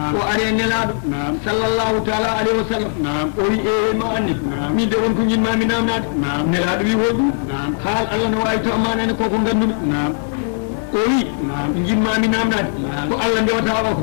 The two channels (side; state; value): right; silent; digital silence